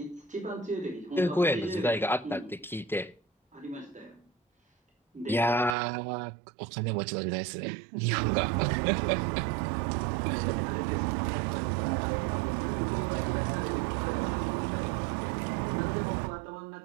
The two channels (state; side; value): drops out; left; at 5.8 s